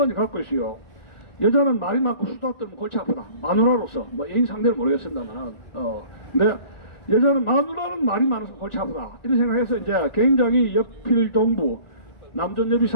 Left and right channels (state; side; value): late; right; 1.4 ms